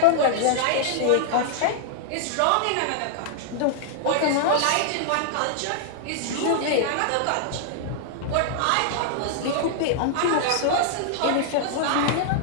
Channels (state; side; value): different; both; correlation -0.01